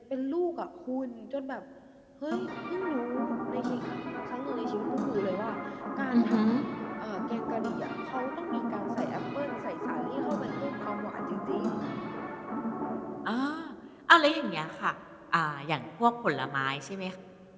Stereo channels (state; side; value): identical; both; correlation 1.00